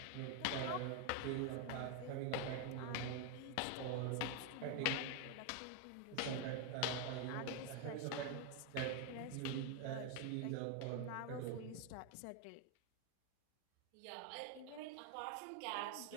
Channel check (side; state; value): both; different; correlation 0.01